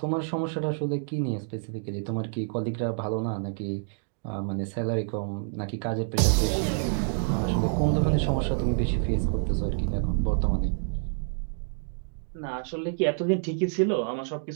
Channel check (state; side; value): silent; left; digital silence